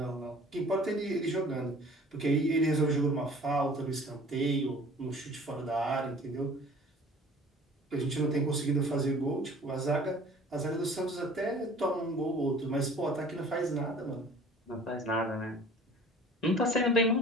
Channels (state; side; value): normal; both; correlation 0.48